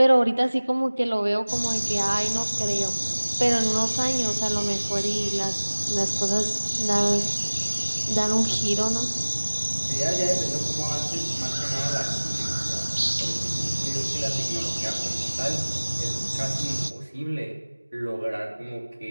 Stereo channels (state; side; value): inverted; both; correlation -1.00